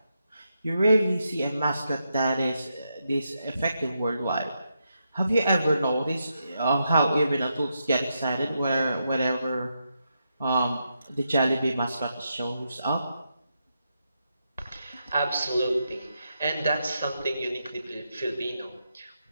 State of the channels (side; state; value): both; inverted; correlation -0.83